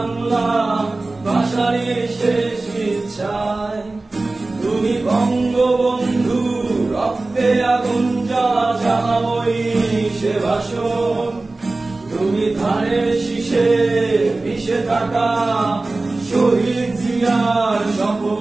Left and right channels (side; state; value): left; quieter; 3.2 dB